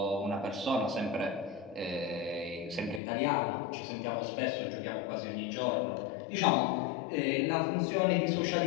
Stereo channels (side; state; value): right; drops out; at 3.0 s